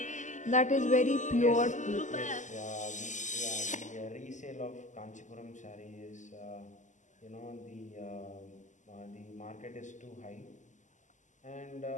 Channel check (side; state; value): right; late; 0.36 ms